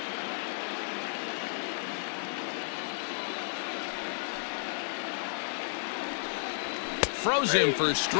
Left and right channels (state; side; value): silent; right; 55 dB below the other